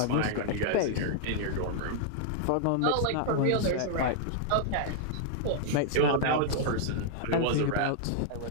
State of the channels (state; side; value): different; both; correlation -0.01